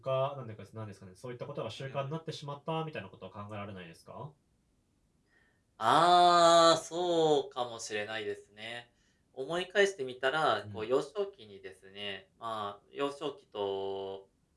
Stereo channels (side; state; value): both; identical; correlation 1.00